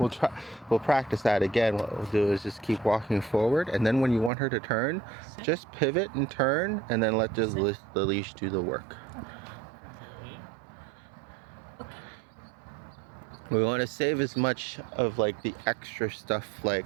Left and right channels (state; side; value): drops out; left; at 4.3 s